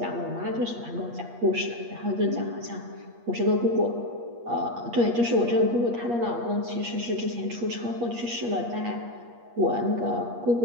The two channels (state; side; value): late; left; 8.4 ms